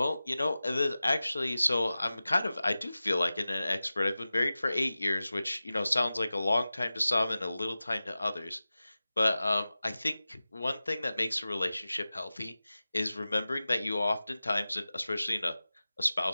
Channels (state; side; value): inverted; both; correlation -0.96